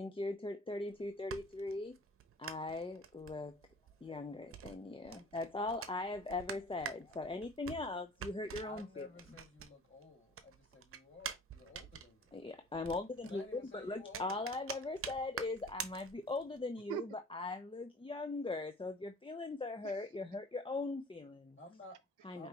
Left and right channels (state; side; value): normal; both; correlation 0.48